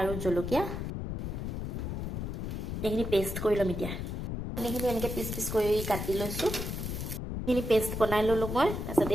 আৰু জলকীয়া এইখিনি পেষ্ট কৰি ল'ম এতিয়া কণীখিনি এনেকৈ পিচ পিচ কৰি কাটি লৈছোঁ এইখিনি পেষ্ট বনাই ল'লোঁ মই তাৰপিছত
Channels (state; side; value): noise; left; rumble, 4 dB below the sound